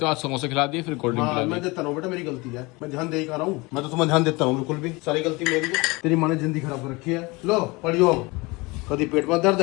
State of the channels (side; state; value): right; quieter; 24.7 dB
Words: हो। आज समोसे खिला दिए, फिर कोल्ड ड्रिंक हाँ, खिला मैं दी। देता हूँ बेटा मेरी गलती है मैं ध्यान दे ही खा रहा हूँ मैं तो तुम्हें ध्यान देता हूँ बिल्कुल भी सारी गलती मेरी है तेरी माँ ने जिंदगी खराब कर रखी है लो पढ़ियो कभी पेट में दर्द